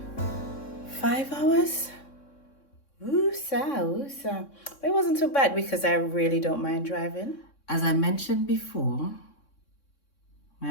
5 hours. Woosa. But it wasn't too bad because I really don't mind driving. As I mentioned before, my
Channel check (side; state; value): right; late; 3.6 ms